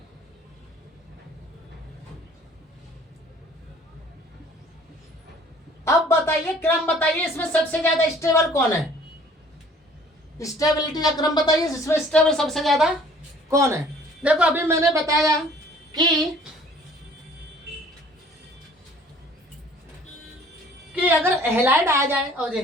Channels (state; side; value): normal; both; correlation 0.53